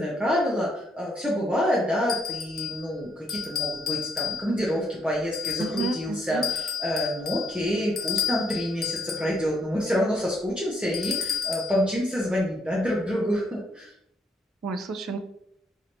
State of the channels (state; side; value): normal; both; correlation 0.74